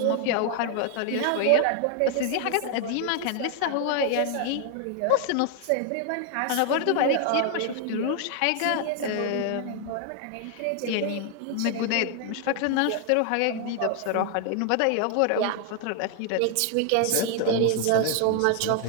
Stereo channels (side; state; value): both; different; correlation 0.00